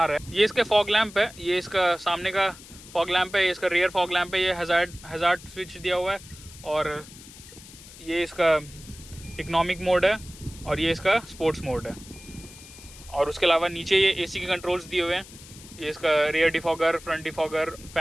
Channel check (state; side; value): noise; left; hiss, 18 dB below the sound